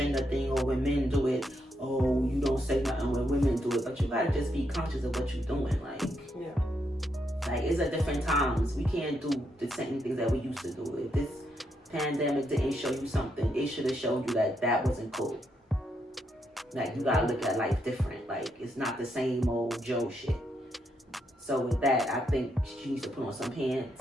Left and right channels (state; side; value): normal; both; correlation 0.79